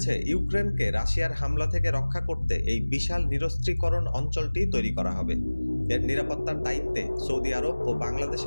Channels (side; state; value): both; inverted; correlation -1.00